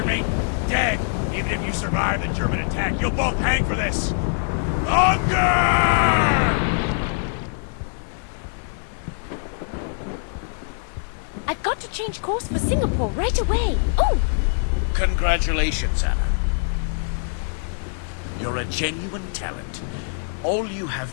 me? Dead! Even if you survive the German attack, you'll both hang for this! Unger! I've got to change course for Singapore right away. Oh! Congratulations, Anna. You're a genuine talent. All you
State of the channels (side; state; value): right; silent; 55 dB below the other